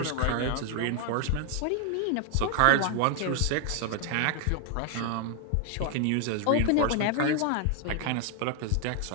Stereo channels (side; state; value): both; different; correlation 0.00